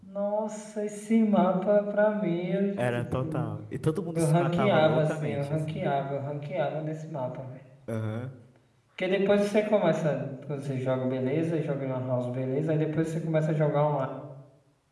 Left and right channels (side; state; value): both; identical; correlation 1.00